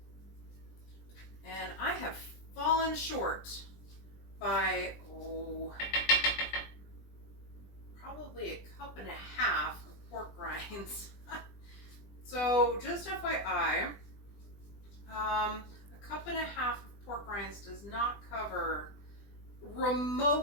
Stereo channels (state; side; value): late; right; 20 ms